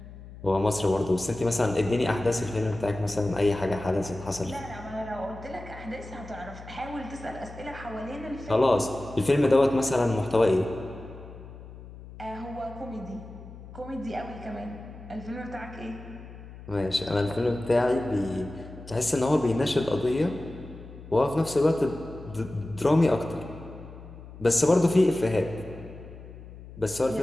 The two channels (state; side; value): noise; left; hum, 16 dB below the sound